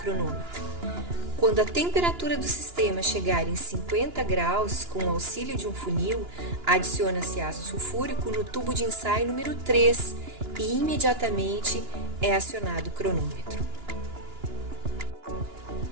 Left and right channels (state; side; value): late; left; 2.9 ms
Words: Quando a temperatura do sistema chegar em 50 graus, com o auxílio de um funil, adiciona-se ácido sulfúrico no tubo de ensaio número 3 e imediatamente é acionado o cronômetro.